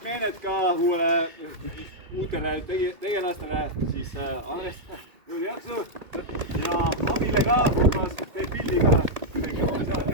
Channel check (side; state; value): left; late; 1.7 ms